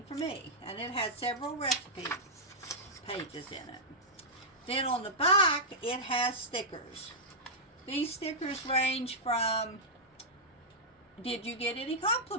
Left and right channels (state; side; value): normal; both; correlation -0.10